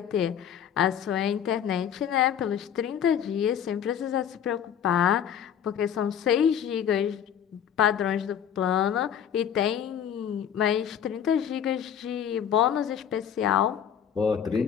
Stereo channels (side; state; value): right; quieter; 8.9 dB